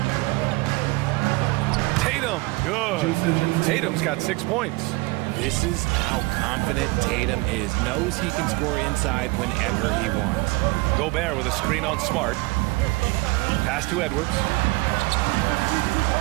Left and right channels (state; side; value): quieter; left; 23.3 dB